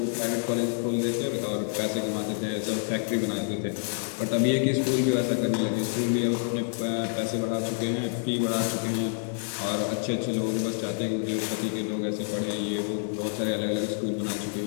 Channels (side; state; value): right; silent; digital silence